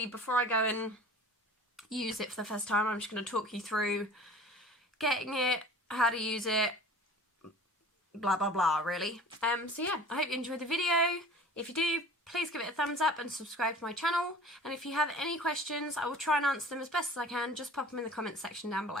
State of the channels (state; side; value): normal; both; correlation 0.44